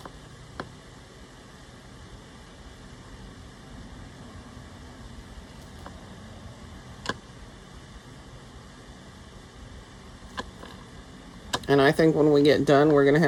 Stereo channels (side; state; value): both; identical; correlation 1.00